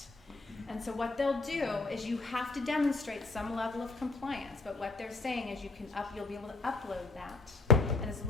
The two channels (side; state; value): right; quieter; 3.7 dB